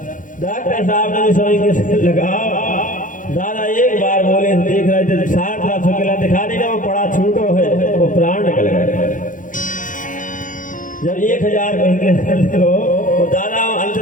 डॉक्टर साहब ने समझ लगा, दादा एक बार बोले, देख रहे थे 60 लाख रुपया दिखा देगा, वो पड़ा छूटो है, वो प्राण निकल गए। जब 1000 कहेंगे तो दादा अंत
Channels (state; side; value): late; right; 0.38 ms